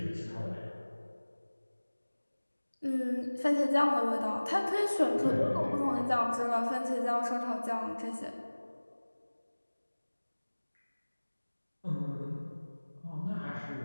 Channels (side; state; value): both; inverted; correlation -1.00